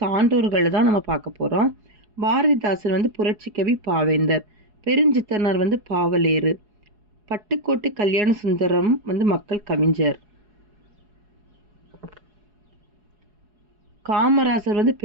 தான் நம்ம பார்க்க போகிறோம். பாரதிதாசன் புரட்சிக்கவி பாவேந்தர், பெருஞ்சித்தனார் பாவலேறு, பட்டுக்கோட்டை கல்யாண சுந்தரம் மக்கள் கவிஞர், காமராசர்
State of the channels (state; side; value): late; left; 4.8 ms